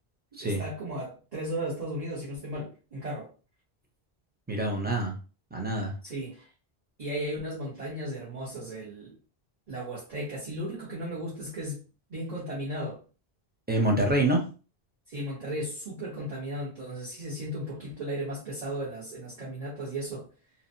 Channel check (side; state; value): both; normal; correlation 0.06